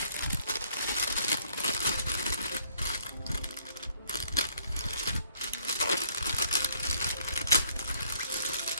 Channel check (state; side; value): inverted; both; correlation -0.64